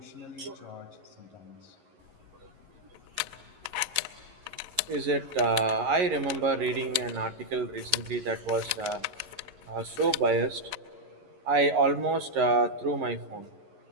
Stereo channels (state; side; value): late; left; 11 ms